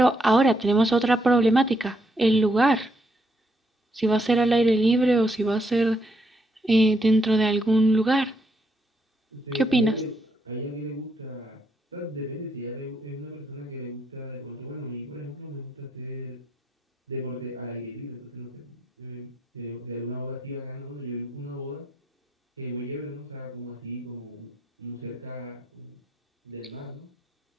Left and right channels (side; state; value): both; normal; correlation 0.76